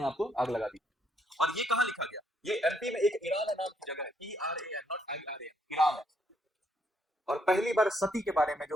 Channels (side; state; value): both; normal; correlation 0.72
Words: आप को आग लगा दी। और ये कहाँ लिखा गया? ये एमपी में एक ईरान नाम की जगह है, ERAN नॉट IRA, ईरान है। और पहली बार सती के बारे में